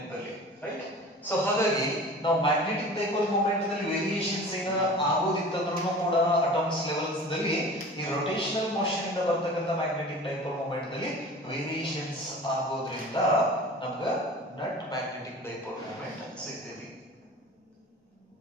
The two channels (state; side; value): normal; both; correlation 0.40